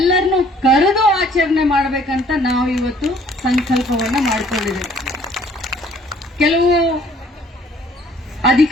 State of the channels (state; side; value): normal; both; correlation 0.58